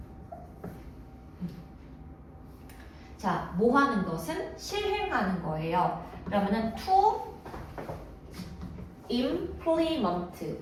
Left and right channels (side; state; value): both; identical; correlation 1.00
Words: 자, 뭐 하는 것은 실행하는 거예요. 그러면은 to implement